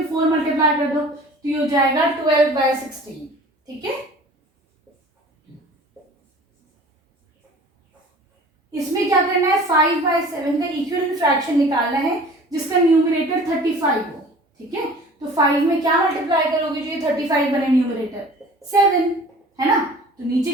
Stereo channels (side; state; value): both; normal; correlation 0.45